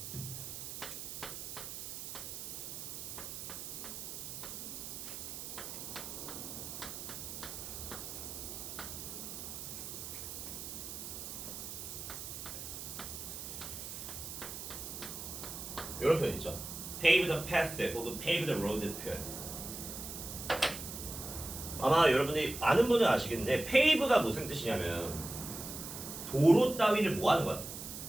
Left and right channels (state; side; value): noise; right; hiss, 8 dB below the sound